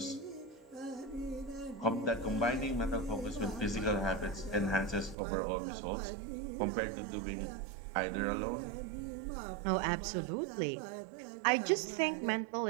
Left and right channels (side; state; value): left; drops out; at 5.2 s